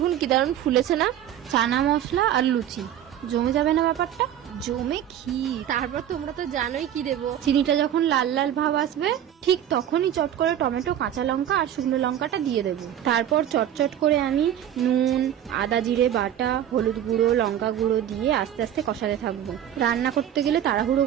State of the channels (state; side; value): quieter; left; 10.7 dB